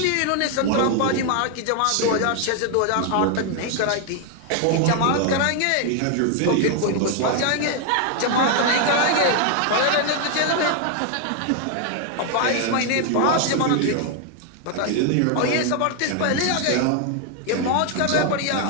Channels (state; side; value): different; both; correlation 0.00